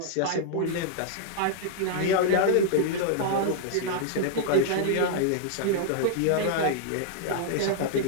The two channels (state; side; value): different; both; correlation -0.01